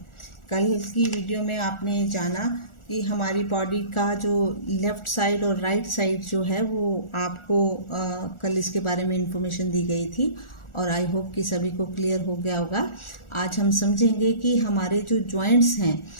कल की वीडियो में आपने जाना कि हमारी बॉडी का जो लेफ़्ट साइड और राइट साइड जो है वो आपको कल इसके बारे में इंफॉर्मेशन दी गई थी और आई होप कि सभी को क्लियर हो गया होगा। आज हम समझेंगे कि हमारे जो जॉइंट्स हैं,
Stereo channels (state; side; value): late; right; 1.4 ms